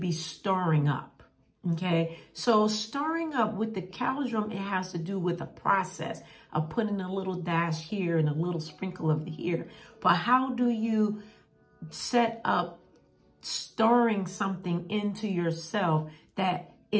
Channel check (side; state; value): both; identical; correlation 1.00